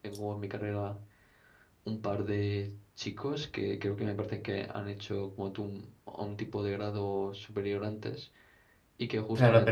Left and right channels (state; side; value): identical; both; correlation 1.00